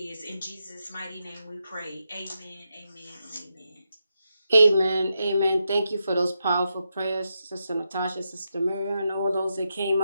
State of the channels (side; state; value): both; inverted; correlation -0.85